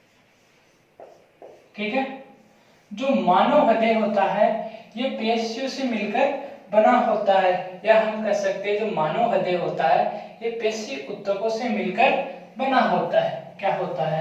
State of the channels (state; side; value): identical; both; correlation 1.00